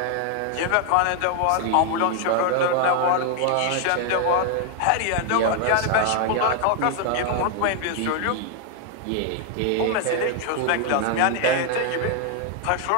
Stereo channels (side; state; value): both; different; correlation 0.00